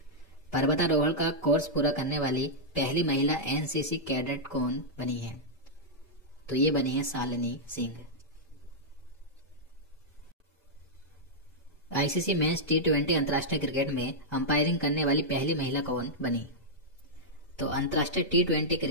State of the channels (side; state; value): both; normal; correlation -0.08